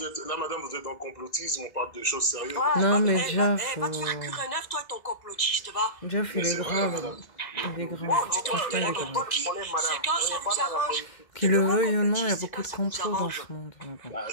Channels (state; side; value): late; right; 1.9 ms